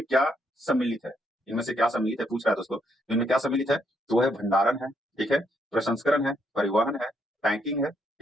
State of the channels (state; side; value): normal; both; correlation 0.75